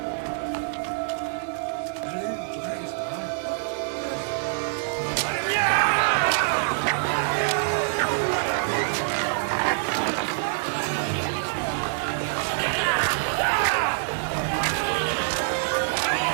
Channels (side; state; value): left; silent; digital silence